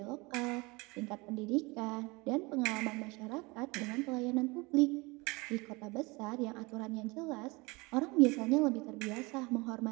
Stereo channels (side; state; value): left; quieter; 25.1 dB